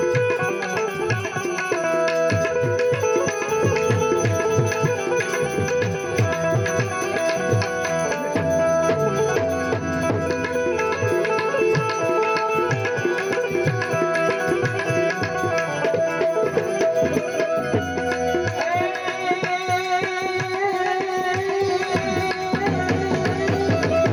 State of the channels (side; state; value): both; identical; correlation 1.00